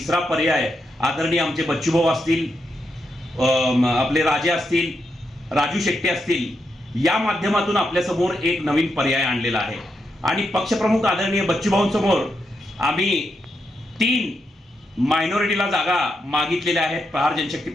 पर्याय आदरणीय आमचे बच्चूभाऊ असतील, आपले राजे असतील, राजू शेट्टी असतील, या माध्यमातून आपल्यासमोर एक नवीन पर्याय आणलेला आहे। आणि पक्षप्रमुख आदरणीय बच्चूभाऊंसमोर आम्ही 3 मायनॉरिटीला जागा मागितलेल्या आहेत प्रहार जनशक्ती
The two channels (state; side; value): normal; both; correlation 0.83